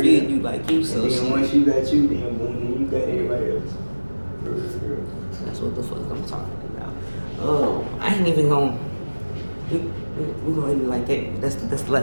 you like you. So and then once you got you, then boom, you got everybody else. That's what the fuck I'm talking about. I ain't even gonna. We gonna end it like that. That's the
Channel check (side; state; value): both; inverted; correlation -1.00